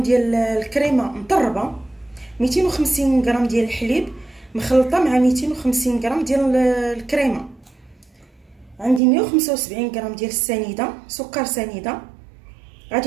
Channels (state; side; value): drops out; left; at 9.0 s